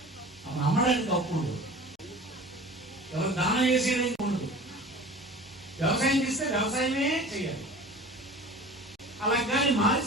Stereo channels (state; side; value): normal; both; correlation 0.40